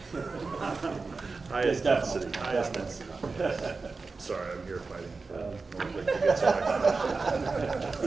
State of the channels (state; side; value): quieter; left; 4.2 dB